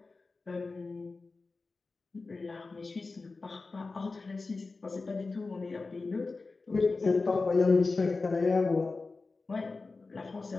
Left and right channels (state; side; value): quieter; right; 3.9 dB